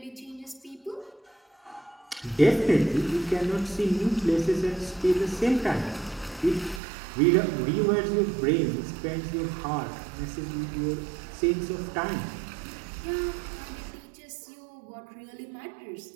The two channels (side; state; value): left; drops out; at 6.8 s